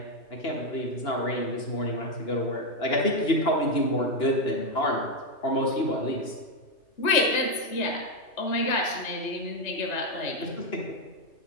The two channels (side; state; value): right; late; 2.9 ms